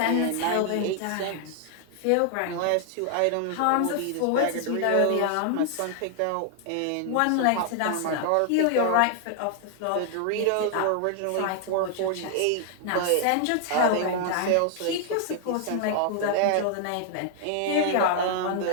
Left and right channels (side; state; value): both; different; correlation 0.00